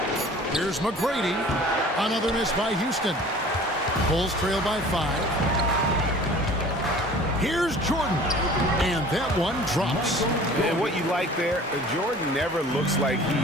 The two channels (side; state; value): both; normal; correlation 0.46